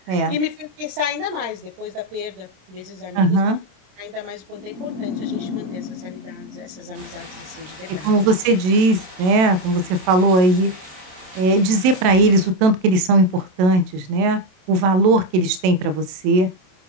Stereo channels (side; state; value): left; late; 27 ms